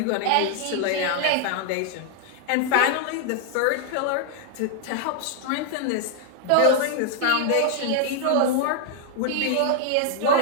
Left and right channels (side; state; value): both; different; correlation -0.01